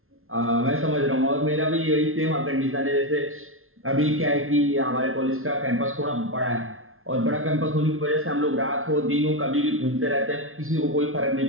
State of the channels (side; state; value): left; late; 0.61 ms